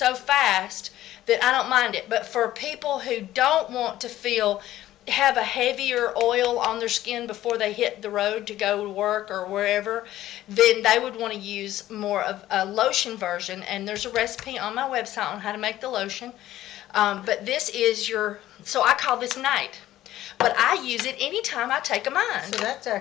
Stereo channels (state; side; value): quieter; right; 14.1 dB